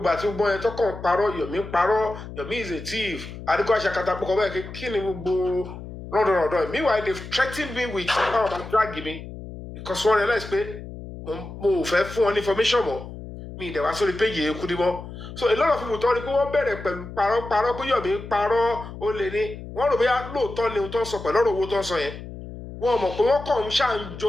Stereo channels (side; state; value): left; noise; hum, 12 dB below the sound